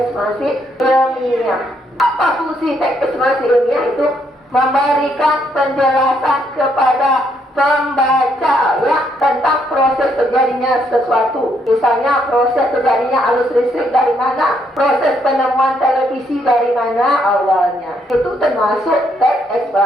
ilmiah. Apa fungsi teks eksplanasi ilmiah? Itu memberikan penjelasan kepada pembaca ya tentang proses terjadinya sesuatu. Misalnya proses terjadinya arus listrik dari mana, proses penemuan televisi dari mana awalnya. Itu termasuk teks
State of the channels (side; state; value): both; normal; correlation 0.73